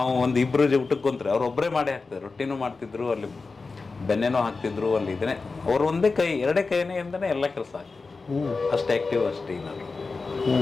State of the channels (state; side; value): quieter; right; 4.1 dB